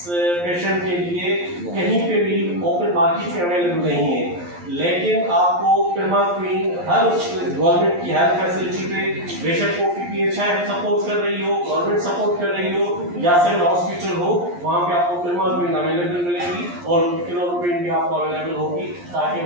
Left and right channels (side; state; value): left; late; 11 ms